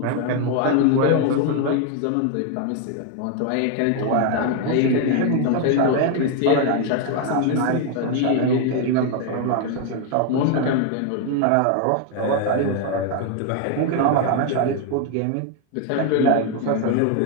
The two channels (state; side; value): different; both; correlation 0.00